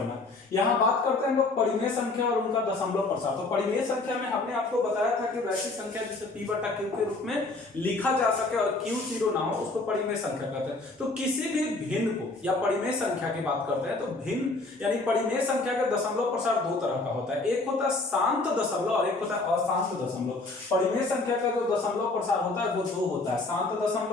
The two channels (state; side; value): quieter; right; 3.3 dB